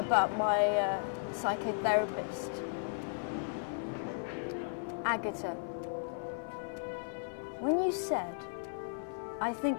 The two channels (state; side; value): silent; right; 54 dB below the other